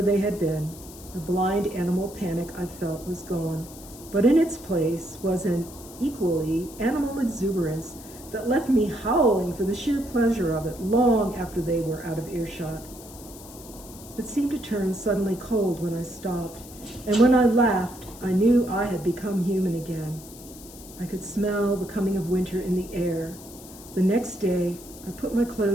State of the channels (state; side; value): noise; left; hiss, 18 dB below the sound